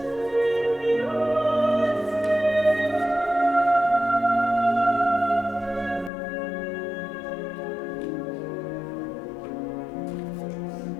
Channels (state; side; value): drops out; right; at 6.1 s